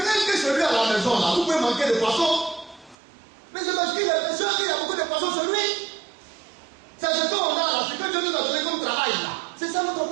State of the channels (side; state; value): left; drops out; at 3.0 s